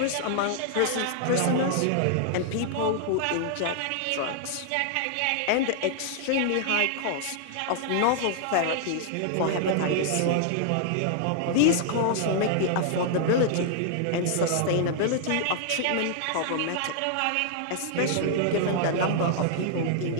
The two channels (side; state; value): both; different; correlation -0.01